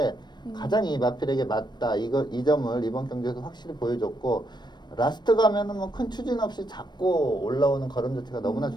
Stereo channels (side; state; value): right; late; 0.21 ms